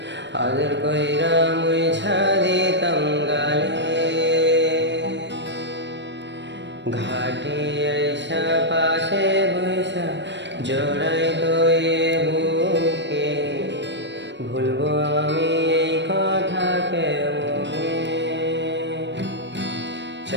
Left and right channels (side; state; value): left; late; 0.52 ms